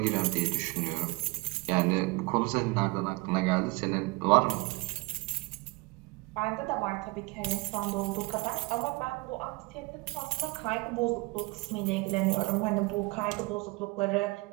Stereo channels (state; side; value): quieter; left; 24.8 dB